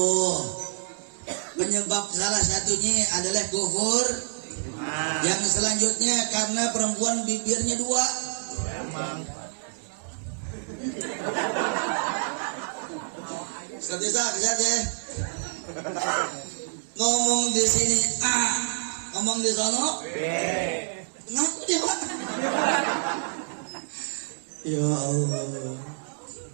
Penyebab salah satunya adalah kufur. Yang selanjutnya karena perempuan bibirnya 2. Bisa ya. Ngomong di sini A, ngomong di sono B. Ngaku dia, Pak. Ya Allah.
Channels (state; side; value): silent; left; digital silence